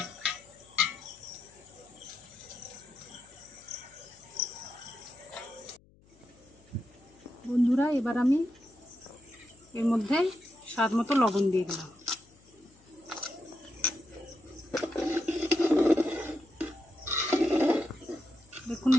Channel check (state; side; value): noise; left; hum, 28 dB below the sound